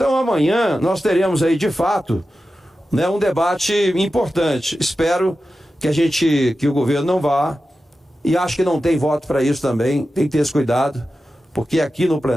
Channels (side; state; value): both; normal; correlation 0.92